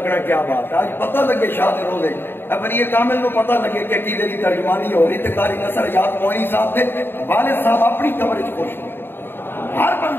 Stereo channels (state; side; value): late; right; 0.10 ms